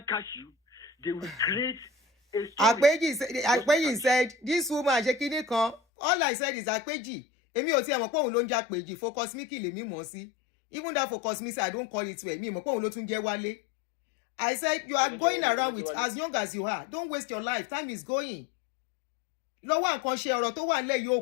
catch you, they will create a story. Àpéjì said, this woman ṣe kíní kan. All I said is Àpéjì. Èmi ò tiẹ̀ mọ̀ pé òun ló ń jẹ́ Àpéjì. Focus me kí lèmi mọ̀ sí. Even that focus me say I don't call it well. Me mo pon lo tun je wale. I said you are going around with as young as you are. Don't waste your life. Time is going. Lọ́wọ́ nǹkan ṣe ọ̀rọ̀ tó wà nílẹ̀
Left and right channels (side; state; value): right; drops out; at 5.8 s